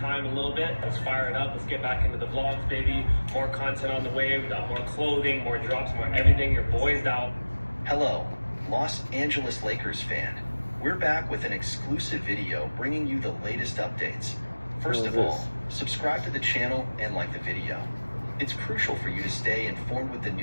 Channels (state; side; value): inverted; both; correlation -1.00